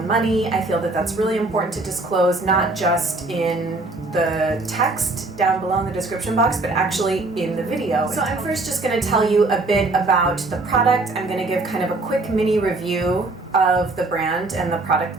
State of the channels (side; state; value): left; quieter; 3.1 dB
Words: money. I feel that that's really important to disclose, not just in the text down below in the description box, but actually in the video. So I'm first just gonna tell you a bit about the product. I'm gonna give kind of a quick mini review of the brand and the product